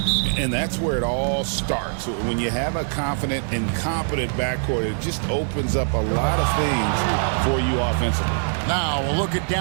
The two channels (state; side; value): silent; left; digital silence